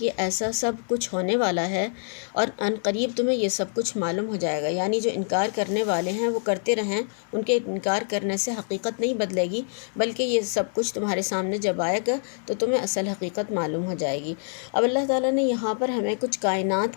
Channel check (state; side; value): silent; right; digital silence